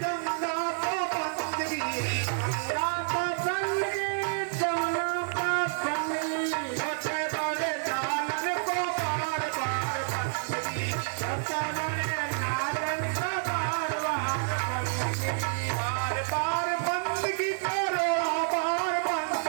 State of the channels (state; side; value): silent; left; digital silence